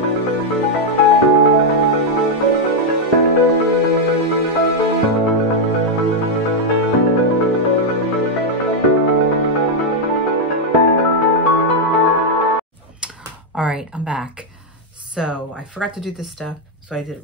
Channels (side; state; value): both; normal; correlation 0.00